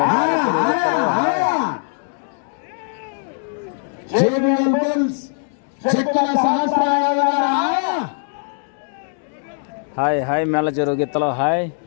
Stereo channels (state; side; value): silent; right; digital silence